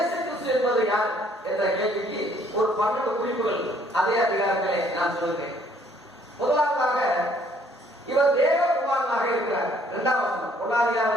கிறிஸ்து என்பது யார் என்ற கேள்விக்கு ஒரு 12 குறிப்புகள் அதே அதிகாரத்திலே நான் சொல்கிறேன். முதலாவதாக, இவர் தேவகுமாரனாக இருக்கிறார். 2ஆம் வசனம், 1ஆம்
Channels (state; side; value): normal; both; correlation 0.63